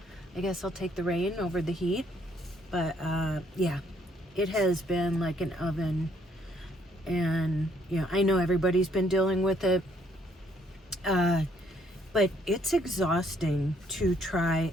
I guess I'll take the rain over the heat. But yeah, it has been like an oven, and I know everybody's been dealing with it, but it's exhausting to try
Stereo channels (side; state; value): both; normal; correlation 0.67